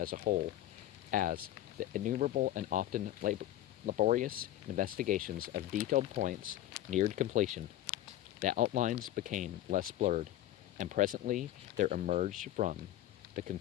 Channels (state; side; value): quieter; right; 13.4 dB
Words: a whole, as the innumerable and often laborious investigations of detailed points neared completion. The outlines became less blurred, and presently there emerged from the